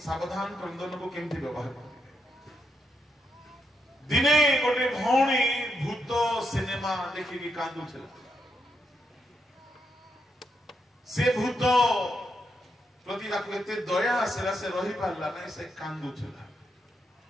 सावधान क्रंदन को केमती व्यवहार करबे दिने गोटे भौणी भूत सिनेमा देखी की कांदु छल से भूत प्रति ताको एते दया आसेला से रही पारला नै से कांदु छल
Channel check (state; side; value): normal; both; correlation 0.81